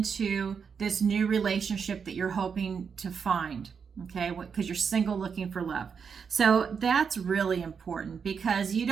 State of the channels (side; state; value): left; quieter; 6.3 dB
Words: this new relationship that you're hoping to find, okay, because you're single looking for love. So that's really important, because you